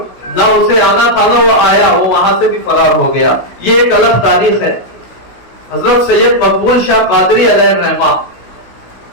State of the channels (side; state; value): right; late; 16 ms